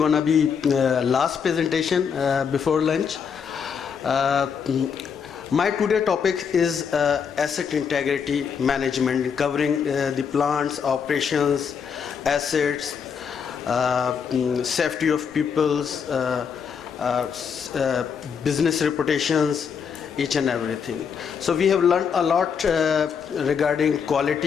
be last presentation before lunch. My today topic is asset integrity management, covering the plants, operations, assets, safety of people's business reputations, each and everything. So we have learned a lot regarding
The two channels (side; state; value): right; quieter; 6.8 dB